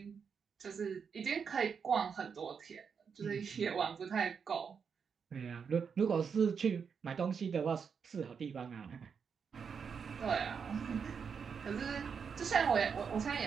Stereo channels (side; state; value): left; quieter; 6.3 dB